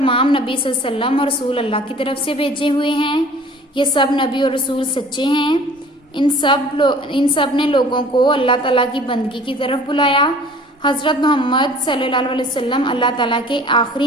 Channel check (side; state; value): both; normal; correlation 0.49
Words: نبی صلی اللہ علیہ وسلم اور رسول اللہ کی طرف سے بھیجے ہوئے ہیں، یہ سب نبی اور رسول سچے ہیں، ان سب نے لوگوں کو اللہ تعالیٰ کی بندگی کی طرف بلایا۔ حضرت محمد صلی اللہ علیہ وسلم اللہ تعالیٰ کے آخری